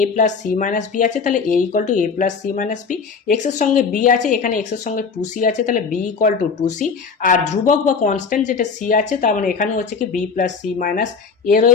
plus c minus b আছে, তাহলে a equal to a plus c minus b. X এর সঙ্গে বি আছে, এখানে এক্স এর সঙ্গে টু সি আছে, তাহলে b equal to two c. আর ধ্রুবক বা কনস্ট্যান্ট যেটা সি আছে, তার মানে এখানে হচ্ছে কি b plus c minus a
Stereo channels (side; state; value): right; quieter; 5.4 dB